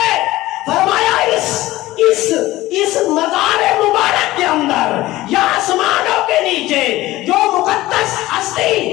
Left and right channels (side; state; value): right; quieter; 17.3 dB